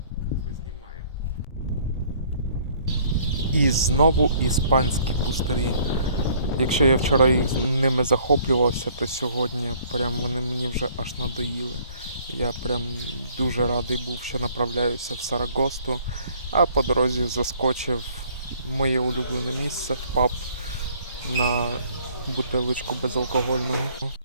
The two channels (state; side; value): inverted; both; correlation -0.58